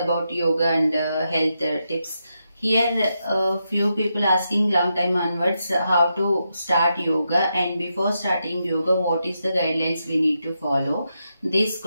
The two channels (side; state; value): both; inverted; correlation -0.84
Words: yoga and health tips. Here few people asking long time onwards how to start yoga, and before starting yoga what is the guidelines we need to follow. This